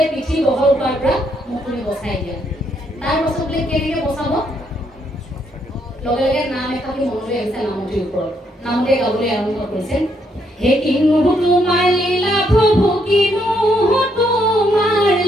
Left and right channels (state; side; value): normal; both; correlation 0.74